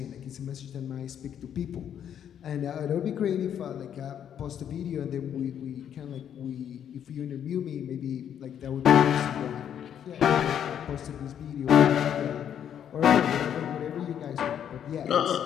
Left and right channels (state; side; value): quieter; right; 9.3 dB